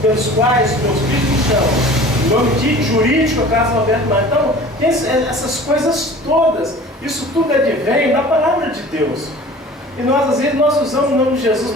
pelos quais meus filhos me chamam. O nome de jurídico é Carlos Alberto Marques. Então, tem essas coisas todas. Isso tudo advém da palavra de Deus. E nós, às vezes, nós usamos o nome de Jesus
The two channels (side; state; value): both; normal; correlation 0.43